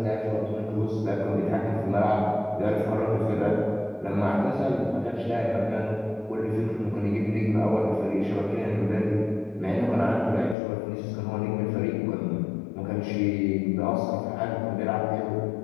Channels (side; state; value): right; drops out; at 10.6 s